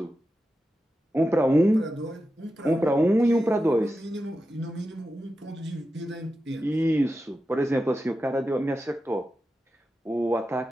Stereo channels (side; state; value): both; normal; correlation 0.91